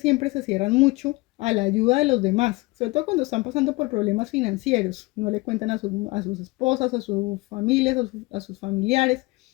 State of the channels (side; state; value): right; quieter; 23.6 dB